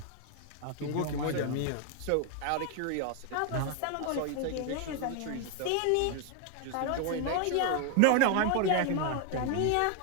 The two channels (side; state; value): both; different; correlation 0.00